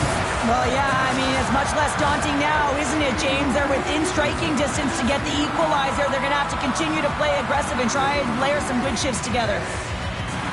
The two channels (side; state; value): both; identical; correlation 1.00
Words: Well, yeah, I mean, it's much less daunting now, isn't it, James? They're within striking distance to get the equalizer. They're going to have to continue to play aggressive and try and layer some good shifts together.